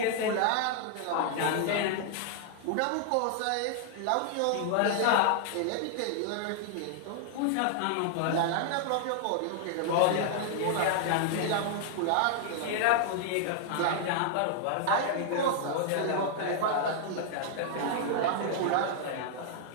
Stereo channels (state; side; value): different; both; correlation -0.01